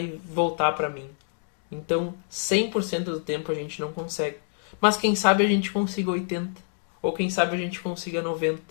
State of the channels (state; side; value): silent; right; digital silence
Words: voltar para mim. Então, 100% do tempo a gente não consegue. Mas quem sabe a gente consiga 80%. Ou quem sabe a gente consiga 90%.